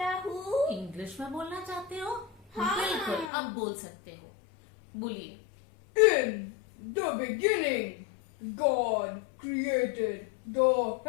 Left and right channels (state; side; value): drops out; right; at 3.3 s